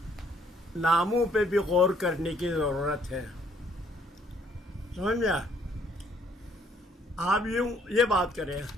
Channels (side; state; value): both; normal; correlation 0.65